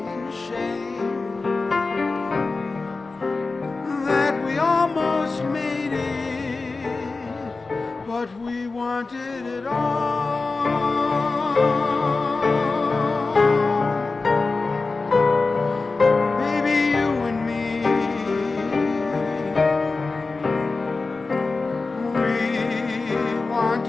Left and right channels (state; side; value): quieter; right; 3.8 dB